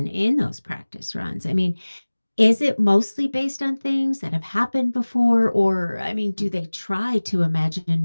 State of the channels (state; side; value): inverted; both; correlation -1.00